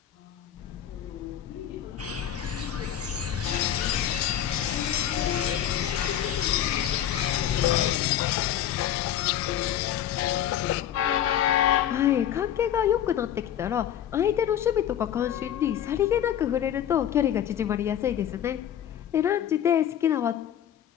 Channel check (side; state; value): right; quieter; 10.5 dB